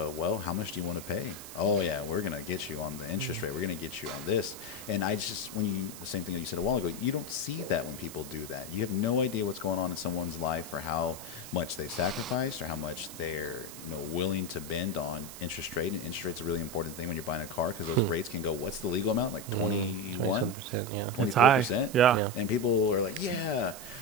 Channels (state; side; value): noise; right; hiss, 13 dB below the sound